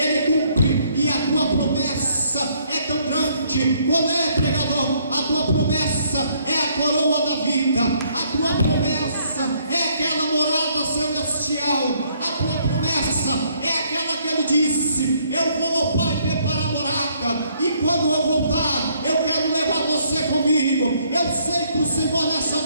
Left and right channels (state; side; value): inverted; both; correlation -0.67